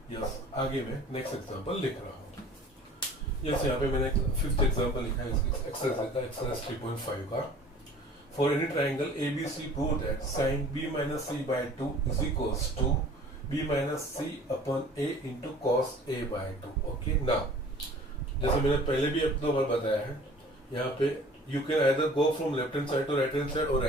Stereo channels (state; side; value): normal; both; correlation 0.48